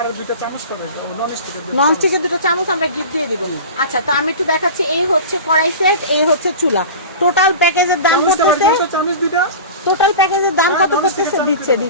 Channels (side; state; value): both; inverted; correlation -0.34